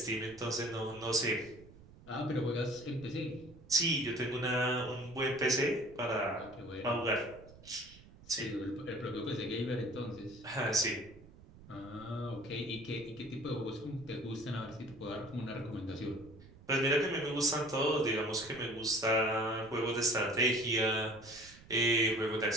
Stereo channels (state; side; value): noise; right; rumble, 21 dB below the sound